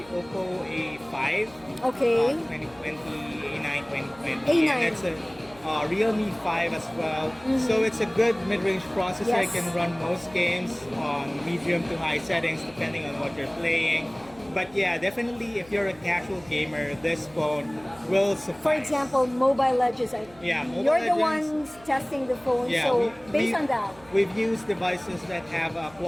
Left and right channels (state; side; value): noise; right; hum, 24 dB below the sound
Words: Oppo A5. Okay. 2020, A9 2020. A9. And it's a Realme 5 as well. So it's a good mid-range processor. Yes. It can run most games on medium to high settings depending on what you're playing. But yeah, definitely if you're a casual gamer, this phone will suffice. For example, Mobile Legends. You're the ones testing the phone, so based on that. We've used devices that have a